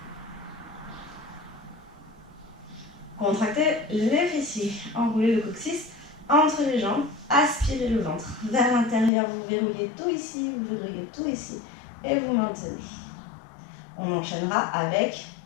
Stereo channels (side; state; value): right; drops out; at 9.1 s